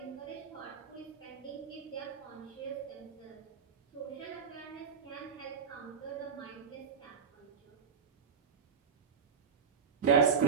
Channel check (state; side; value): quieter; left; 6.3 dB